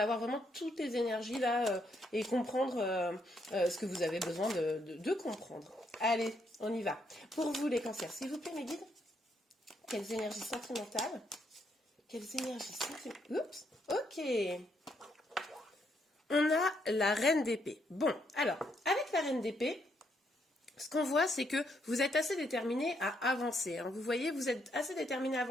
vraiment toutes les énergies là et comprendre ce que vous avez besoin de comprendre. Allez, on y va. Pour vous les cancers, s'il vous plaît mes guides, quelles énergies sentimentales? Quelles énergies sentimentales? Oups, ok. On a la reine d'épée. Bon, alors, avec la reine d'épée, ce qu'on voit, c'est que vous êtes assez déterminé à avancer. Hein. Vous voyez, vous êtes assez déterminé à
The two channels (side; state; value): both; normal; correlation 0.75